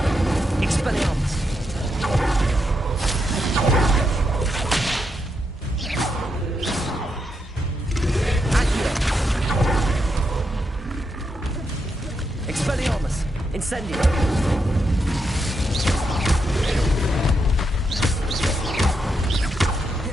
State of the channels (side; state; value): both; normal; correlation 0.82